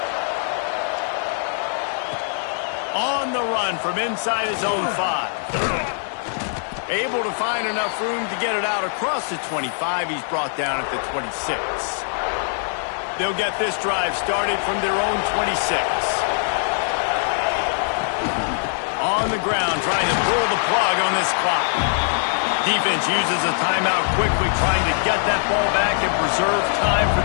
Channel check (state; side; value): silent; right; digital silence